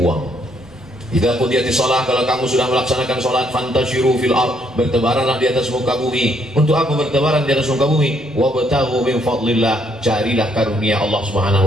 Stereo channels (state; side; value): normal; both; correlation 0.70